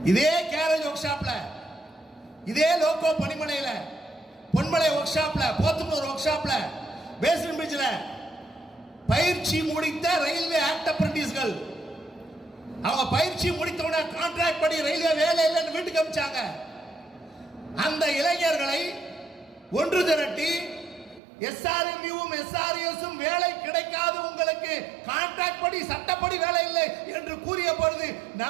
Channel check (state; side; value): drops out; left; at 21.2 s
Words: இதே கேரேஜ் ஒர்க் ஷாப்ல, இதே லோகோ பணிமனையில, பொன்மலை ஒர்க் ஷாப்ல, போத்தனூர் ஒர்க் ஷாப்ல, பேஸ்மென்ட் பிரிட்ஜ்ல பயிற்சி முடித்த ரயில்வே ஆக்ட் அப்ரண்டிஸ்கள் அவங்க பயிற்சி முடித்தவன கான்ட்ராக்ட் படி ரயில்வே வேலை இல்லைன்னு வீட்டுக்கு அனுப்பிச்சாங்க. அந்த இளைஞர்களை ஒன்று திரட்டி எஸ்ஆர்எம்யூவும் எஸ்ஆர்எஸும் வேலை கிடைக்காது, உங்களுக்கு கான்ட்ராக்ட் படி சட்டப்படி வேலை இல்லை என்று கூறிய பொழுது